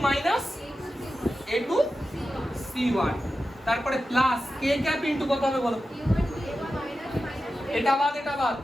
minus a2 c1, তারপরে প্লাস k ক্যাপ ইনটু কত হবে বলো? এটা বাদ এটা বাদ,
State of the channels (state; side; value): normal; both; correlation 0.92